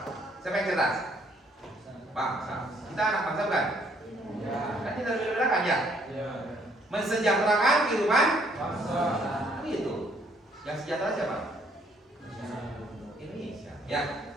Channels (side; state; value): both; normal; correlation 0.66